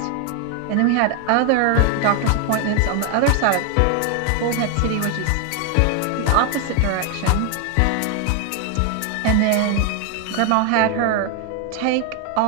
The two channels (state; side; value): different; both; correlation 0.01